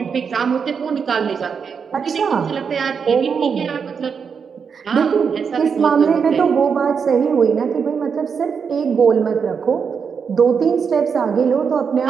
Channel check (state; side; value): quieter; left; 6.3 dB